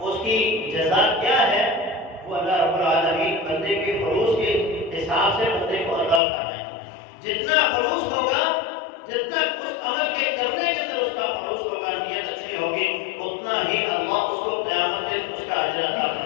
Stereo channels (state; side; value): drops out; right; at 6.2 s